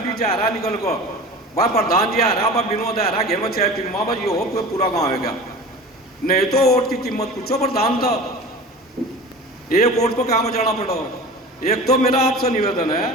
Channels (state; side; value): normal; both; correlation 0.36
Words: जा रहा निकल को, भाई प्रधान जी आ रहा, भाई विनोद आ रहा, घेर में 6 फिल्मा, भाई ये हो कोई पूरा गाँव है क्या? नहीं तो वोट की कीमत पूछो प्रधान था, एक वोट पर काम जाना पड़ा। एक तो मेरा आपसे निवेदन है,